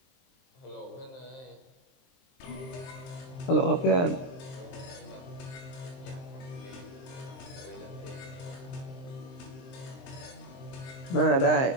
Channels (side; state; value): right; late; 23 ms